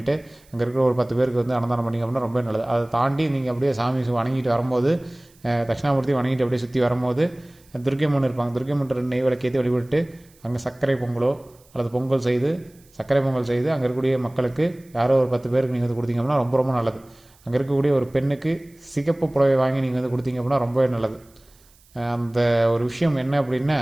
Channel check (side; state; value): right; noise; hiss, 30 dB below the sound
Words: அங்கே இருக்கிற ஒரு 10 பேருக்கு வந்து அன்னதானம் பண்ணிங்க அப்படின்னா ரொம்ப நல்லது. அதை தாண்டி நீங்கள் அப்படியே சாமி வணங்கிட்டு வரும்போது, தட்சிணாமூர்த்தி வணங்கிட்டு அப்படியே சுற்றி வரும்போது துர்க்கையம்மன் இருப்பாங்க, துர்க்கையம்மன் நெய் விளக்கேற்றி வழிபட்டு அங்கே சர்க்கரை பொங்கலோ அல்லது சர்க்கரை பொங்கல் செய்து அங்கே இருக்கக்கூடிய மக்களுக்கு யாரோ ஒரு 10 பேருக்கு நீங்கள் வந்து கொடுத்தீங்க அப்படின்னா ரொம்ப ரொம்ப நல்லது. அங்கே இருக்கக்கூடிய ஒரு பெண்ணுக்கு சிகப்பு புடவை வாங்கி நீங்கள் வந்து கொடுத்தீங்க அப்படின்னா ரொம்பவே நல்லது. அந்த ஒரு விஷயம் என்ன அப்படின்னா,